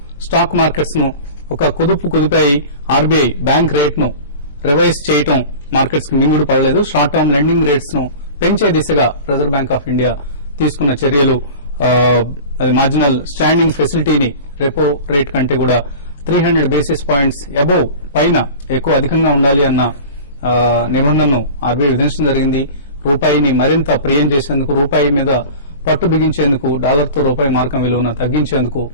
స్టాక్ మార్కెట్స్ ను ఒక కుదిపాయి. ఆర్బీఐ బ్యాంక్ రేట్ ను రివైజ్ చేయడం మార్కెట్స్ కు మింగుడు పడలేదు. షార్ట్ టర్మ్ లెండింగ్ రేట్స్ ను పెంచే దిశగా రిజర్వ్ బ్యాంక్ ఆఫ్ ఇండియా తీసుకున్న చర్యలు మార్జినల్ స్టాండింగ్ ఫెసిలిటీని రెపో రేట్ కంటే కూడా 300 బేసిస్ పాయింట్స్ అబోవ్ పైన అధికంగా ఉండాలి అన్న నిబంధనను ఆర్బీఐ విధించడం జరిగింది. రూపాయిని మరింత ప్రియం చేసేందుకు, రూపాయి మీద పట్టు బిగించేందుకు, డాలర్తో రూపాయి మార్కం విలువను తగ్గించేందుకు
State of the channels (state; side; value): inverted; both; correlation -0.36